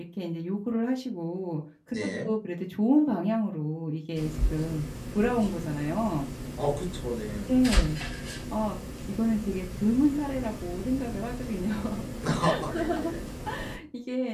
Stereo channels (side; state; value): both; identical; correlation 1.00